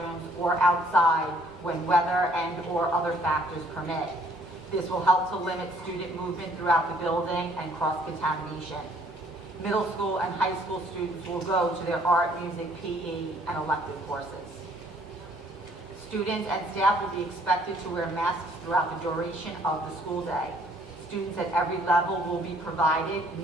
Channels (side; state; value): both; normal; correlation 0.62